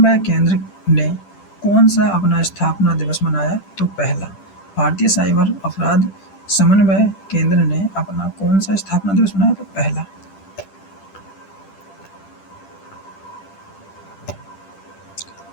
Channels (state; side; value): late; right; 10 ms